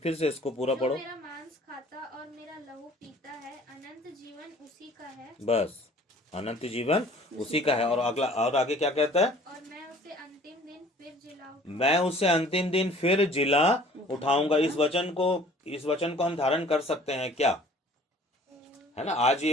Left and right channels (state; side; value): normal; both; correlation 0.52